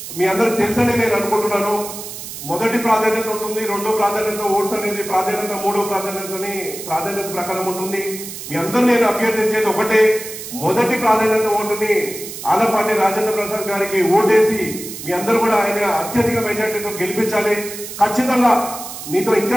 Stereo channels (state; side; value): noise; right; hiss, 10 dB below the sound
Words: మీ అందరికి తెలుసని నేను అనుకుంటున్నాను. మొదటి ప్రాధాన్యత ఉంటుంది, రెండో ప్రాధాన్యత ఓట్స్ అనేది ప్రాధాన్యత, మూడో ప్రాధాన్యత ప్రకారం ఉంటుంది. మీ అందరూ నేను అభ్యర్థించేది ఒకటే, మొదటి ప్రాధాన్యత ఓటుని ఆలపాటి రాజేంద్ర ప్రసాద్ గారికి ఓటేసి మీ అందరూ కూడా ఆయన అత్యధిక మెజార్టీతో గెలిపించాలి. ఖచ్చితంగా మీతో ఇంకా